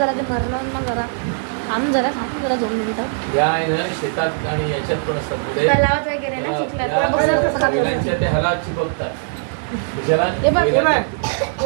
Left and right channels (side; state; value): left; silent; 64 dB below the other